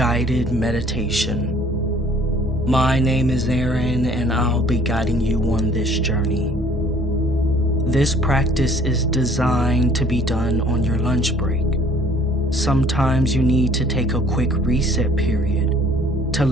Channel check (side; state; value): both; normal; correlation 0.56